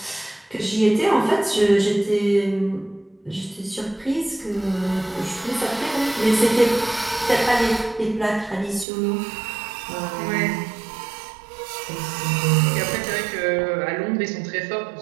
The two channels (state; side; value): drops out; left; at 8.8 s